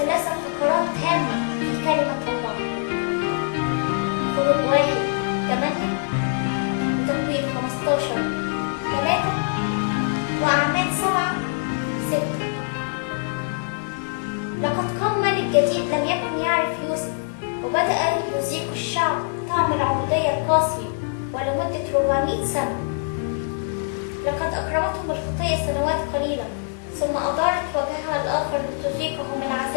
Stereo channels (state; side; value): silent; right; 63 dB below the other